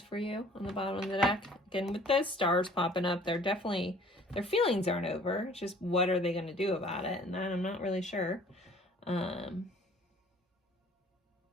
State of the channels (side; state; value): both; normal; correlation 0.53